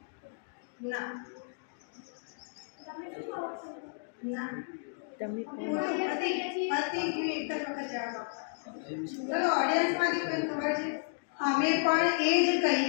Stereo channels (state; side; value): silent; right; digital silence